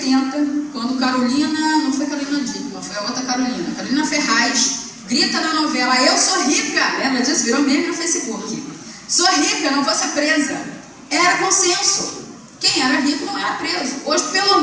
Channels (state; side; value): identical; both; correlation 1.00